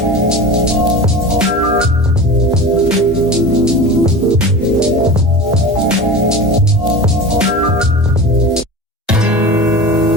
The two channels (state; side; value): normal; both; correlation 0.32